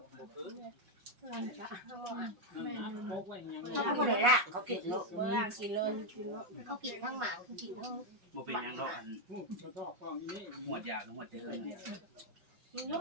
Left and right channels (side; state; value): left; late; 5.6 ms